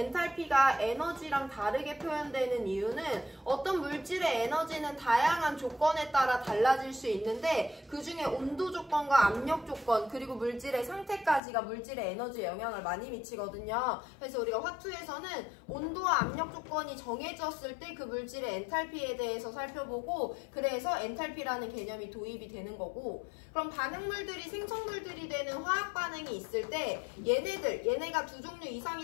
에너지랑 다르게 표현되는 이유는 어떤 물질의 에너지는 다양한 조건에 따라 달라질 수 있는데 그 중에 온도 조건과 압력 조건 그리고 물질의 상태까지가 물질의 에너지에 영향을 많이 미치거든요. 그래서 우리가 화투에서는 온도와 압력 조건이 정해졌을 때 그 물질의 엔탈피에 대해서 살펴보고 그래서 엔탈피라는 개념이 도입이 되는 거고 그럼 반응물들이 생성물들이 되는 화학 반응이 있을 때 얘네가 두 종류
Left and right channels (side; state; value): right; drops out; at 11.4 s